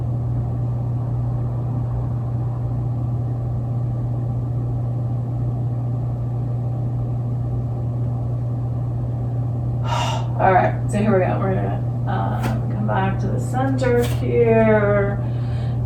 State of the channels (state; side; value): identical; both; correlation 1.00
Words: All right, so here we go. We're gonna come back to the center here.